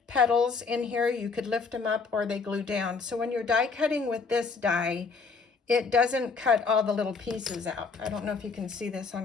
petals in here. You could lift them up or they glue down. So when you're die cutting with this die, it doesn't cut all the little pieces out. I don't know if you can see this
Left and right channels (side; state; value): right; quieter; 4.7 dB